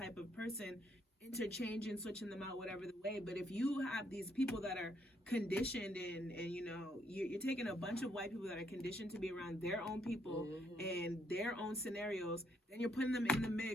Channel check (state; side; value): normal; both; correlation 0.73